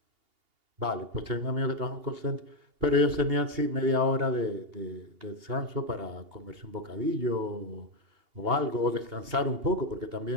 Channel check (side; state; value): left; late; 2.8 ms